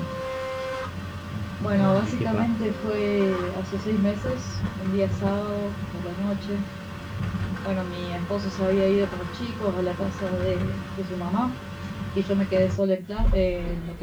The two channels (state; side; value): identical; both; correlation 1.00